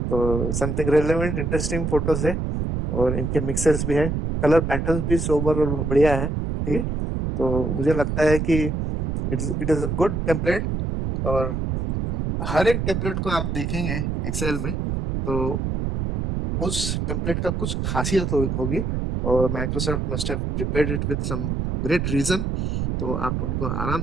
तो समथिंग रेलेवेंट इंटरेस्टिंग फोटोज है और इनके मिक्सर्स भी है, कलर पैटर्न्स भी सोबर और बढ़िया है, ठीक है। तो मुझे लगता है कि it is a good template, और हर एक टेम्पलेट को आप देखेंगे एक्सेल में तो उस टेम्पलेट का कुछ खासियत होगी, और Microsoft must have prepared it with some great reason, तो आप उनको आराम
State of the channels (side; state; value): right; noise; rumble, 1 dB below the sound